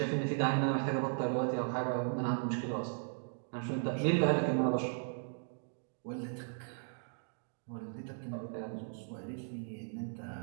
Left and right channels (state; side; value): silent; left; digital silence